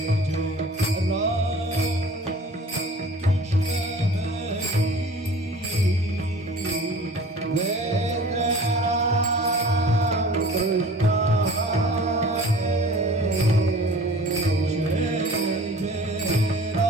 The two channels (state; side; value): normal; both; correlation 0.44